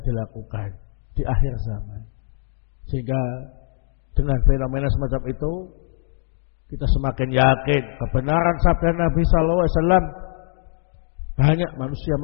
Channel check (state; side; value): silent; right; digital silence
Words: dilakukan di akhir zaman. Sehingga dengan fenomena semacam itu kita semakin yakin kebenaran sabda Nabi sallallahu alaihi wasallam, banyak manusia